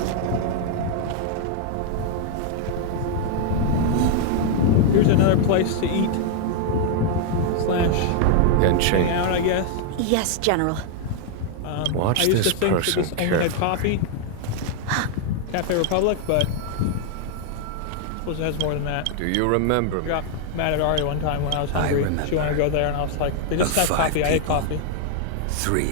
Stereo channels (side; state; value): both; different; correlation 0.00